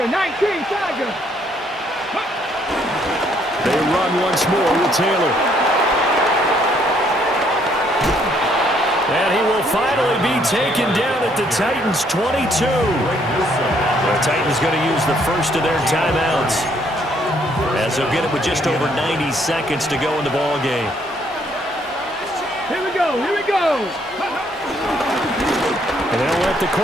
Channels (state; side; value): normal; both; correlation 0.68